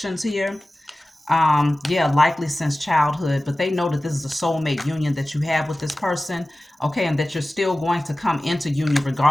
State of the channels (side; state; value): both; normal; correlation 0.96